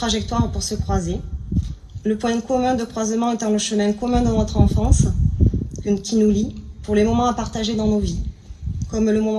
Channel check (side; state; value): both; identical; correlation 1.00